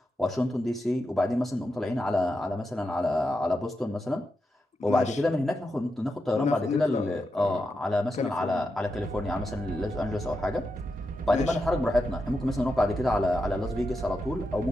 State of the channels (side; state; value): both; normal; correlation 0.87